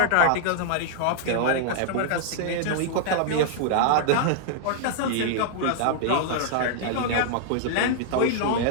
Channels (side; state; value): both; different; correlation -0.01